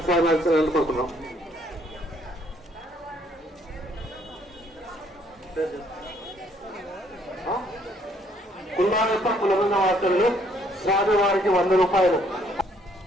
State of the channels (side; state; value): both; normal; correlation 0.66